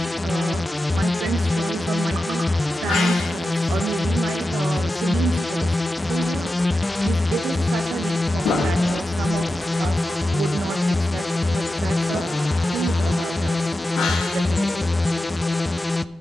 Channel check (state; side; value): normal; both; correlation 0.91